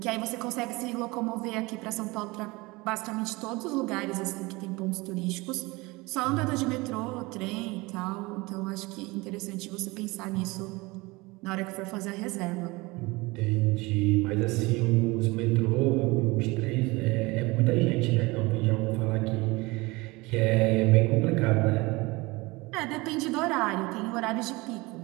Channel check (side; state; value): left; quieter; 23.3 dB